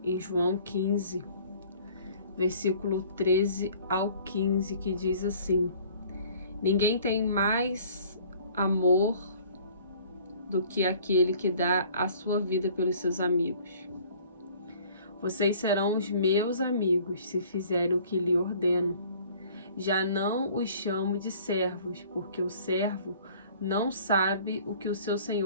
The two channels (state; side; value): inverted; both; correlation -0.53